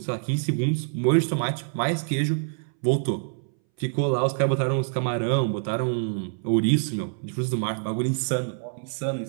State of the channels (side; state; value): left; silent; 61 dB below the other